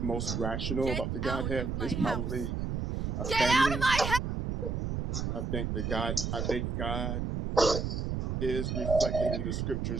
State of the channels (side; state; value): right; noise; rumble, 2 dB below the sound